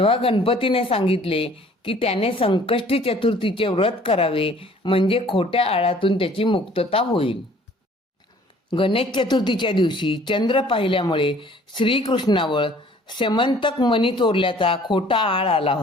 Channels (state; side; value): normal; both; correlation 0.54